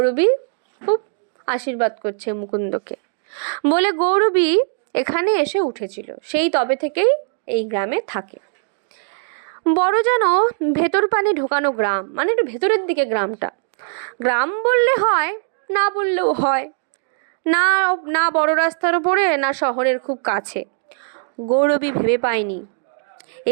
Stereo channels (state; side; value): silent; left; digital silence